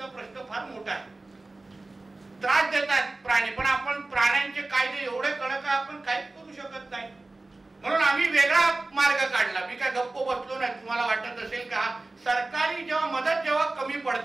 प्रश्न फार मोठा आहे, त्रास देतात प्राणी, पण आपण प्राण्यांचे कायदे एवढे कडक आहे आपण काहीच करू शकत नाही. म्हणून आम्ही वेगळा मार्ग काढला. मी काय गप्प बसलो नाही. तुम्हाला वाटत असेल का सरकारी जेव्हा मदत जेव्हा कमी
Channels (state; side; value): quieter; left; 3.1 dB